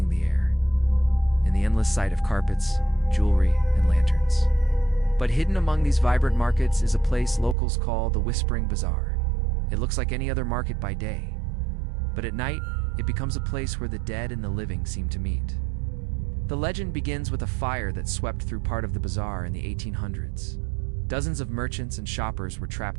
the air, and the endless sight of carpets, jewelry, and lanterns. But hidden among these vibrant markets is a place locals call the Whispering Bazaar. It looks like any other market by day, but at night, it becomes a place where the dead and the living seem to meet. The legend begins with a fire that swept through part of the bazaar in the 1800s. Dozens of merchants and shoppers were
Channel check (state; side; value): drops out; left; at 7.6 s